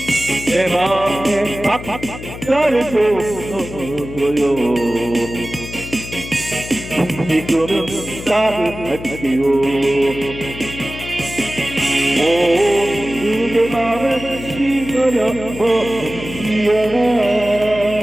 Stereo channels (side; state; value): left; noise; hum, 11 dB below the sound